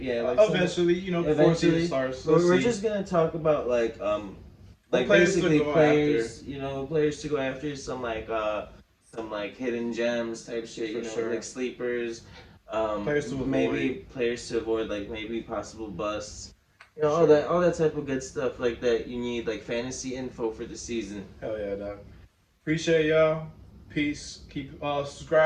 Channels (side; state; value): both; identical; correlation 1.00